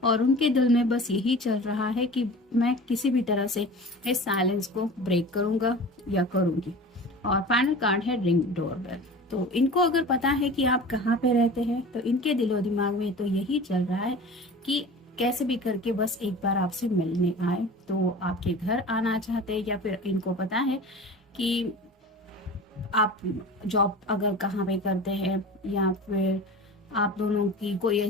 और उनके दिल में बस यही चल रहा है कि मैं किसी भी तरह से इस साइलेंस को ब्रेक करूंगा या करूंगी। और फाइनल कार्ड है रिंग डोरबेल। तो इनको अगर पता है कि आप कहाँ पे रहते हैं तो इनके दिलो दिमाग में तो यही चल रहा है कि कैसे भी करके बस एक बार आपसे मिलने आए। तो आपके घर आना चाहते हैं, या फिर इनको पता है कि आप जॉब अगर कहाँ पे करते हैं, या फिर आप दोनों की कोई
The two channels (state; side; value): normal; both; correlation 0.37